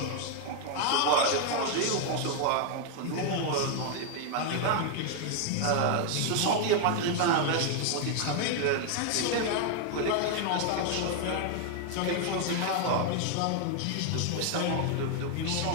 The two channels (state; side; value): different; both; correlation 0.00